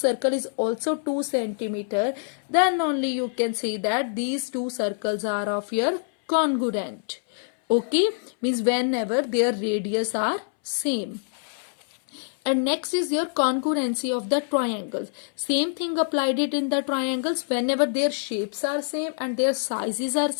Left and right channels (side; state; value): right; silent; 61 dB below the other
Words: is also 2 centimeter, then only you can say that these two circles are of your congruent. Okay, means whenever their radius are same. And next is your congruency of the triangles. Same thing applied it in the triangles. Whenever their shapes are same and their sizes are